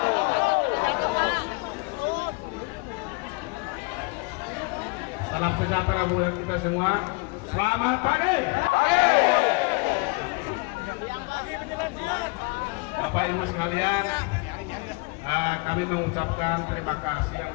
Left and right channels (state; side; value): quieter; right; 28.9 dB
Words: Salam sejahtera buat kita semua. Selamat pagi. Bapak Ibu sekalian, kami mengucapkan terima kasih yang